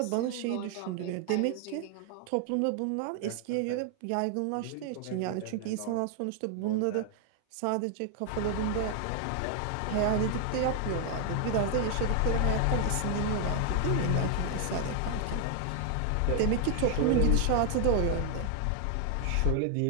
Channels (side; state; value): both; different; correlation 0.00